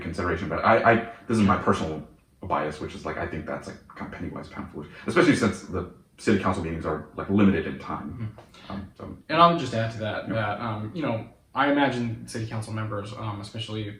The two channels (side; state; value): both; identical; correlation 1.00